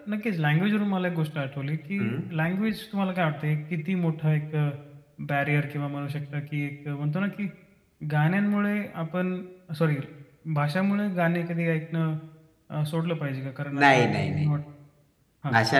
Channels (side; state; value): both; identical; correlation 1.00